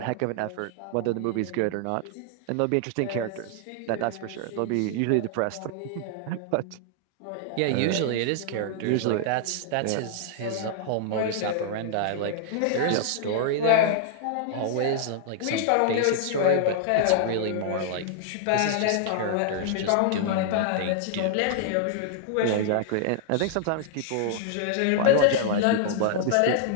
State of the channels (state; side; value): different; both; correlation -0.01